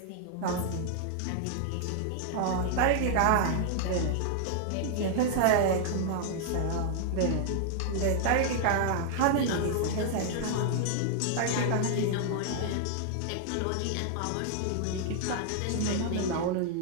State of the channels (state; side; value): different; both; correlation -0.01